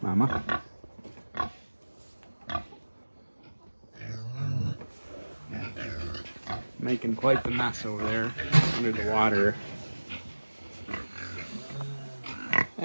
Mama. Making quite the mess over there under the water.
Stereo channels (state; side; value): inverted; both; correlation -1.00